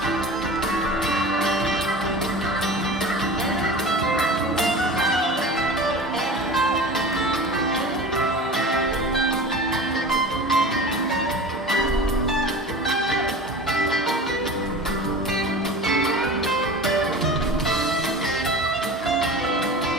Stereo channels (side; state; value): both; normal; correlation 0.35